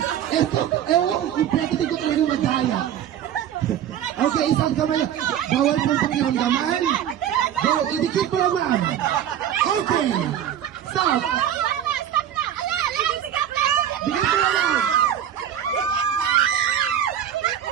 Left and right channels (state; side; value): quieter; left; 10.2 dB